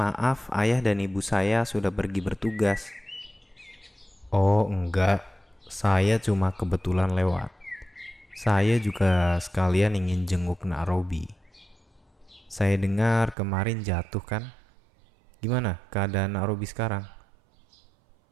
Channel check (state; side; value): drops out; left; at 13.4 s